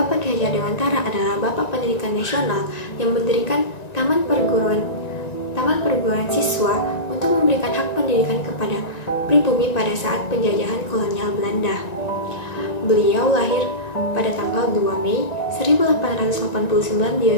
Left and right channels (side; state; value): right; late; 1.9 ms